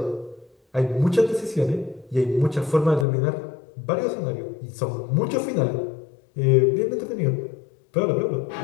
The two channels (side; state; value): right; drops out; at 3.1 s